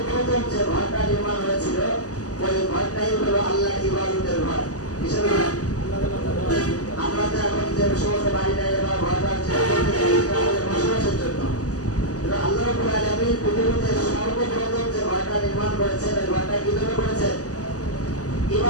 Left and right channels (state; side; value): late; right; 0.67 ms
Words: যে ঘরটা নির্মাণ হয়েছিল ঘরটাই হলো আল্লাহ ইবাদতের ঘর। কিসের ঘর? আমরা তো এখন যে সমস্ত বাড়িটাই বা ঘরটা আমাদের বসবাসের জন্য, আল্লাহ রাব্বুল আলামিন পৃথিবীতে সর্বপ্রথম যে ঘরটা নির্মাণ করেছেন, ওই ঘরটা কি জন্য করেছেন?